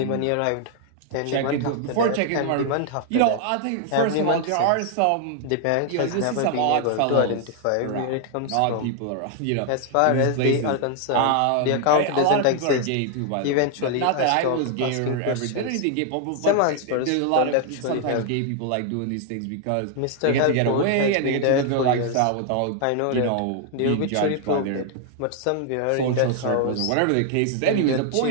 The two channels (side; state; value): both; different; correlation 0.00